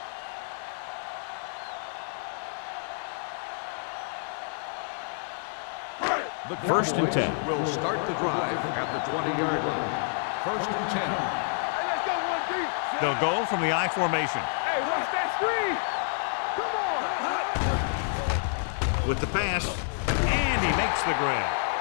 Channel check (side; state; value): right; silent; digital silence